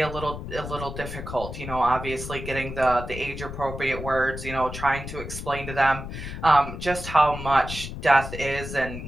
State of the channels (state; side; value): noise; left; rumble, 8 dB below the sound